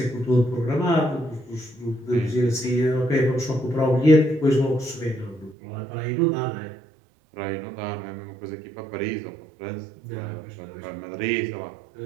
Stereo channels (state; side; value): drops out; left; at 5.6 s